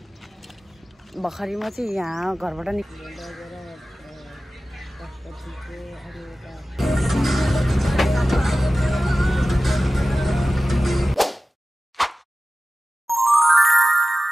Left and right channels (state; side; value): normal; both; correlation 0.95